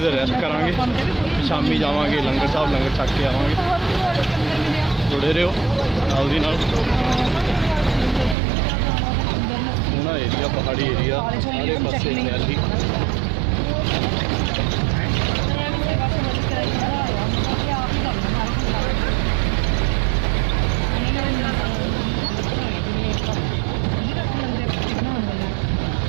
ਦੇਰ ਰੈਸਟ ਕਰਾਂਗੇ, ਸ਼ਾਮੀ ਜਾਵਾਂਗੇ ਲੰਗਰ ਸਾਹਿਬ, ਲੰਗਰ ਛਕ ਕੇ ਆਵਾਂਗੇ। ਜੁੜੇ ਰਹੋ ਨਾਲ ਦੀ ਨਾਲ। ਸੋਹਣਾ ਏਰੀਆ, ਪਹਾੜੀ ਏਰੀਆ, ਸਾਰੇ ਪਾਸੇ ਹਰਿਆਲੀ।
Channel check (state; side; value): drops out; left; at 8.3 s